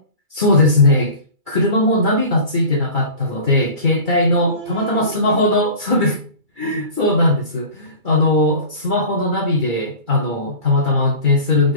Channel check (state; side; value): late; left; 2.3 ms